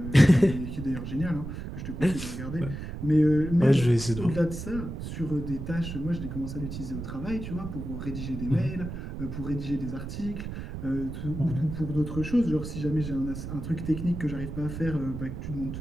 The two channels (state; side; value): noise; right; rumble, 7 dB below the sound